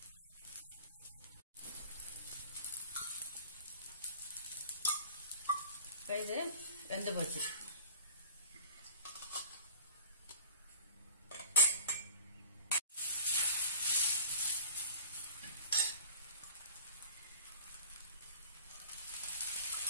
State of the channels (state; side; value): inverted; both; correlation -0.46